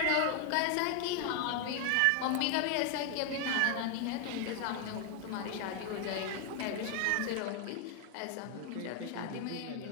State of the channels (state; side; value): different; both; correlation 0.01